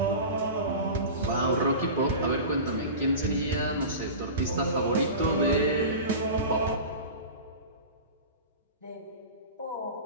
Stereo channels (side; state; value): both; inverted; correlation -0.32